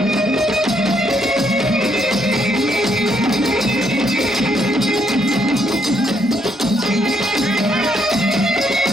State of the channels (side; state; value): both; normal; correlation 0.73